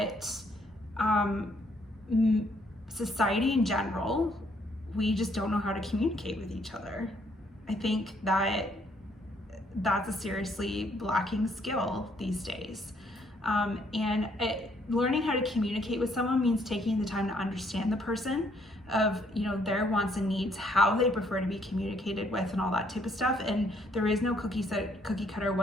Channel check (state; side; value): normal; both; correlation 0.68